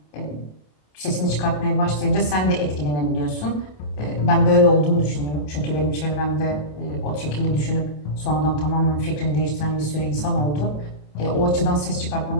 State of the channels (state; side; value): late; right; 27 ms